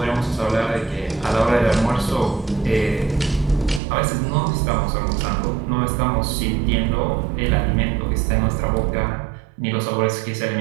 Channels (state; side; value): drops out; left; at 3.8 s